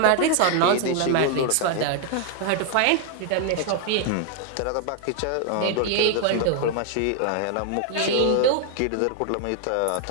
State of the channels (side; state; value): both; different; correlation 0.00